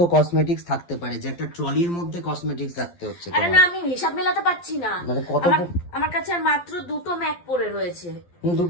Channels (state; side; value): late; right; 12 ms